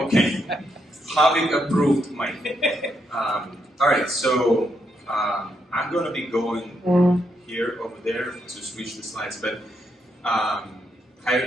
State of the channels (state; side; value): normal; both; correlation 0.79